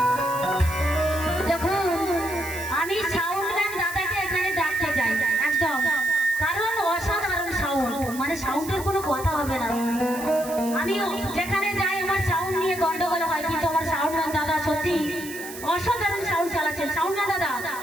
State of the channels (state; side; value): noise; right; hiss, 13 dB below the sound